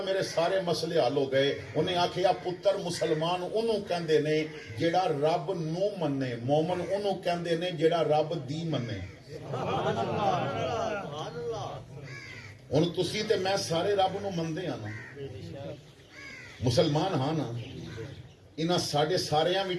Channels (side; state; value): both; identical; correlation 1.00